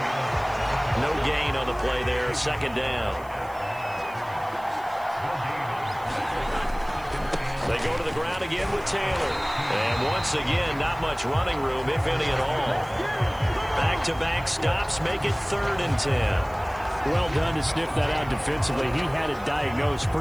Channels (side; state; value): right; noise; hiss, 25 dB below the sound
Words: No gain on the play there, 2nd down. They go to the ground again with Taylor. And once again, not much running room, if any at all. Back-to-back stops make it 3rd and 10. Well done to sniff that out defensively. He had it diagnosed